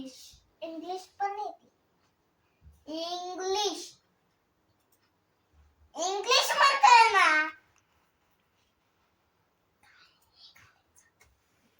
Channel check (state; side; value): identical; both; correlation 1.00